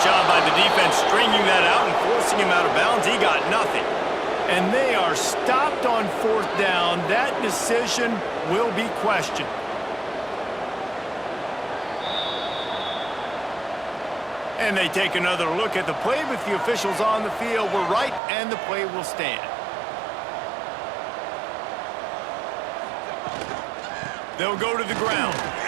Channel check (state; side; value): drops out; left; at 18.2 s